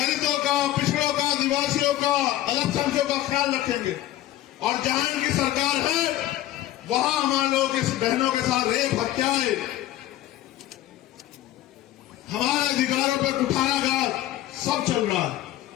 का, पिछड़ों का, आदिवासियों का, अल्पसंख्यकों का ख्याल रखेंगे, और जहां इनकी सरकार है वहां हमारे लोगों के बहनों के साथ रेप, हत्याएं, हमारे अधिकारों पर कुठाराघात सब चल रहा है।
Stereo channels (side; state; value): right; quieter; 14.2 dB